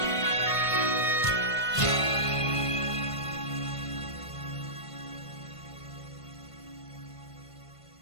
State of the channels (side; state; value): right; late; 1.5 ms